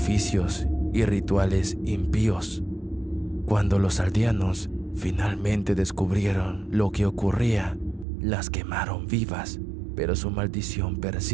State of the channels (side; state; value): left; drops out; at 8.1 s